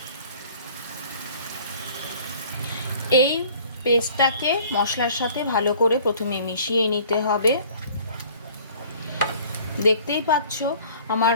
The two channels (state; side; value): inverted; both; correlation -0.51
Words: এই পেস্টটাকে মশলার সাথে ভালো করে প্রথমে মিশিয়ে নিতে হবে। দেখতেই পাচ্ছ আমার